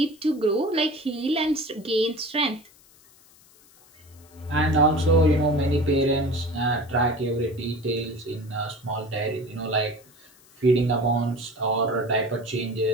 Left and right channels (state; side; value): noise; left; hiss, 27 dB below the sound